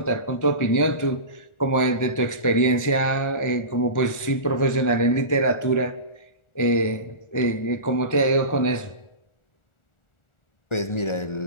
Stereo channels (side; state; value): right; late; 1.4 ms